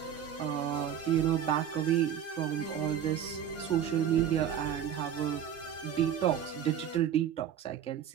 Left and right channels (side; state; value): left; quieter; 9.2 dB